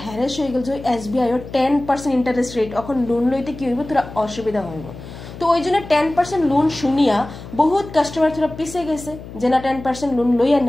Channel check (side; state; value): left; noise; hum, 14 dB below the sound